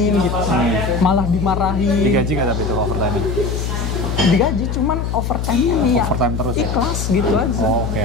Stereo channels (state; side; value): noise; left; hum, 2 dB below the sound